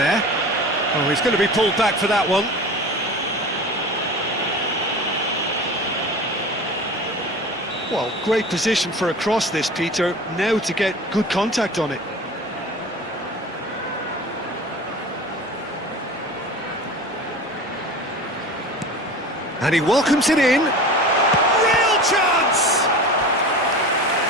Oh, he's going to be pulled back for that one. Well, great position for a cross this, Peter. Now to get good contact on it. And he welcomes it in. Real chance!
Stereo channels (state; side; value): normal; both; correlation 0.35